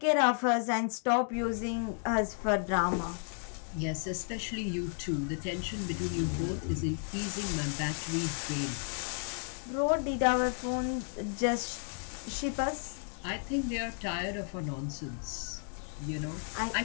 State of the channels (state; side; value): silent; right; 56 dB below the other